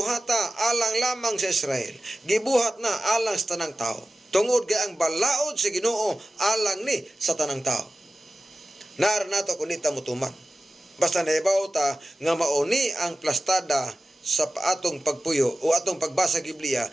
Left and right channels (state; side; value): normal; both; correlation 0.95